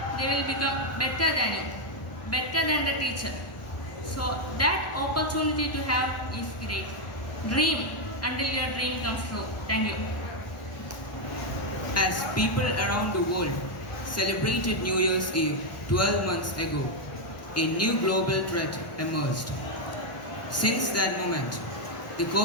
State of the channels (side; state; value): right; late; 1.2 ms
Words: they will become better than the teacher. So that opportunity to have is great. Dream until your dream comes true. Thank you. As people around the world celebrated New Year's Eve 12 months ago, a new global threat emerged. Since that moment, the